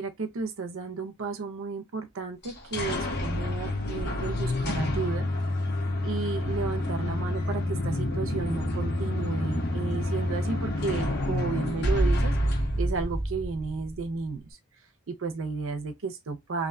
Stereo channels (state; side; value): normal; both; correlation 0.70